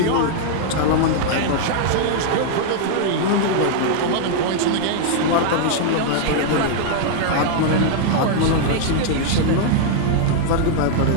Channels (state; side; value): different; both; correlation -0.01